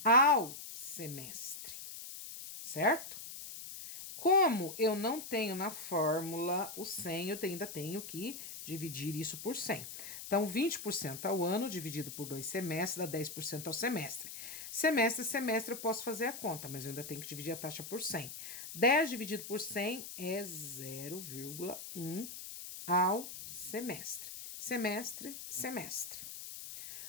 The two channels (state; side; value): noise; left; hiss, 10 dB below the sound